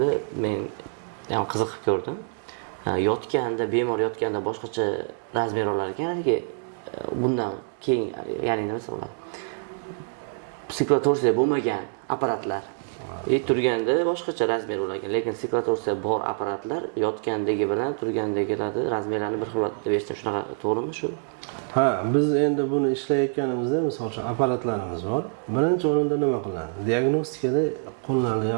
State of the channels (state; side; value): silent; left; digital silence